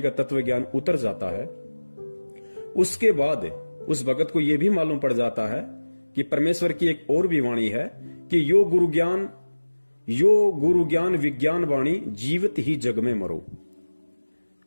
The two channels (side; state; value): both; inverted; correlation -1.00